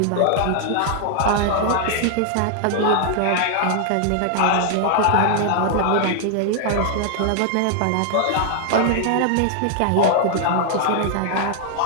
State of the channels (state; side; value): different; both; correlation 0.00